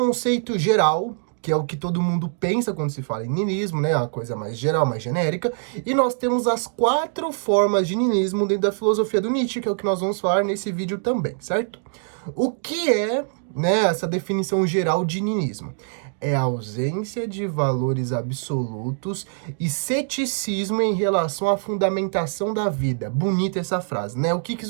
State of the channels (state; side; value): silent; left; digital silence